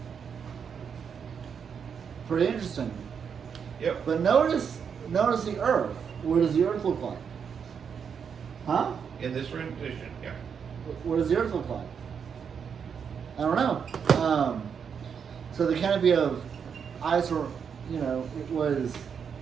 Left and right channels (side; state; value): left; quieter; 6.9 dB